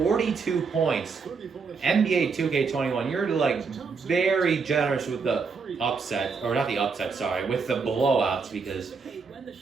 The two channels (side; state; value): left; quieter; 5.1 dB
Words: points. NBA 2K21, you're very generous with the upset, or not the upset, sorry, with the blowouts, because